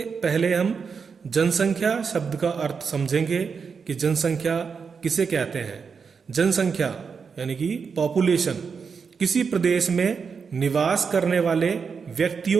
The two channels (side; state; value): left; quieter; 5.8 dB